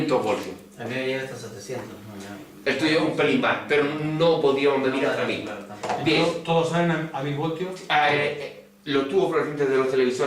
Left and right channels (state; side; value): identical; both; correlation 1.00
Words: voltios. A mí me llega hasta 700. Esto es un pelín más, pero no podíamos medir hasta 1000. Bien. ¿Todos salen a 1000 voltios? Los tubos fluorescentes de los